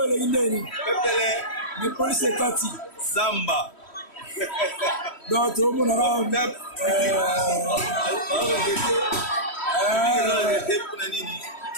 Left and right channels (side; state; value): right; late; 3.1 ms